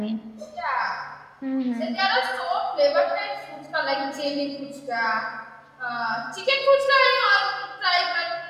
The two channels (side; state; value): both; identical; correlation 1.00